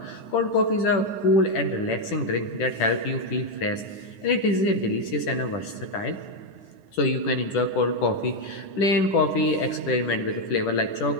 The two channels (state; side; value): late; right; 10 ms